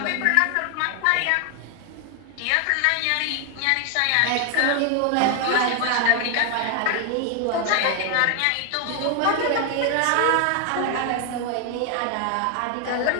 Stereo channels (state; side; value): different; both; correlation 0.00